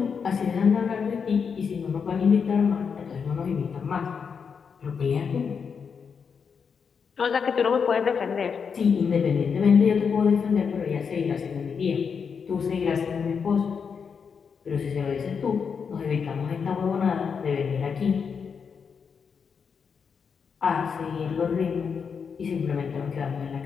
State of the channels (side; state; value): right; quieter; 6.2 dB